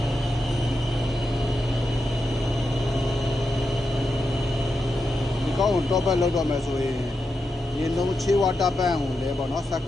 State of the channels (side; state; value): both; normal; correlation 0.87